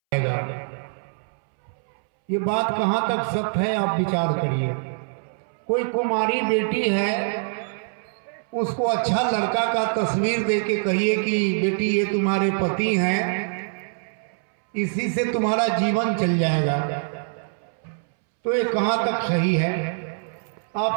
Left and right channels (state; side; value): silent; left; 62 dB below the other